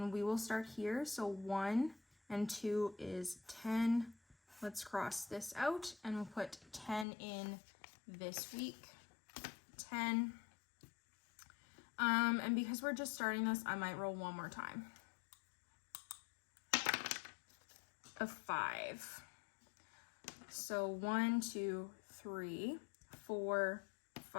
we will start here. So 1 and 2 is 10. Let's cross this out and we'll put 10 in this week. 10. And because we're just starting this, I might roll one more time. A 5. So 1, 2, 3, 4,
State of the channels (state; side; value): drops out; right; at 7.1 s